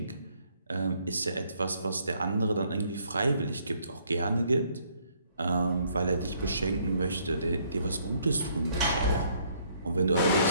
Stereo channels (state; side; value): inverted; both; correlation -0.67